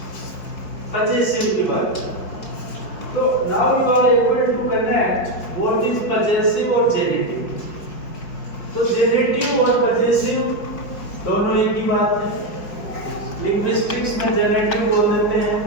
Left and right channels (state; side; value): late; right; 5.0 ms